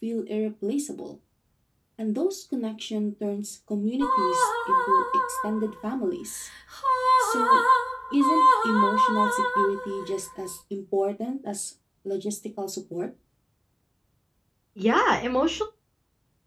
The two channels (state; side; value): identical; both; correlation 1.00